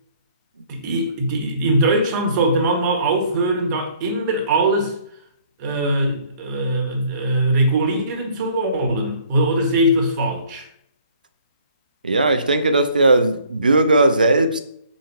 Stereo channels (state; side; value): inverted; both; correlation -0.59